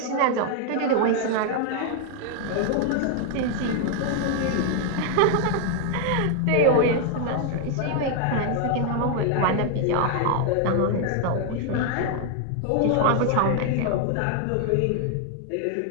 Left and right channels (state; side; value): different; both; correlation 0.00